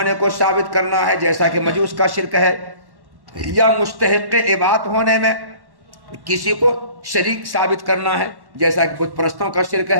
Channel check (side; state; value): left; late; 1.1 ms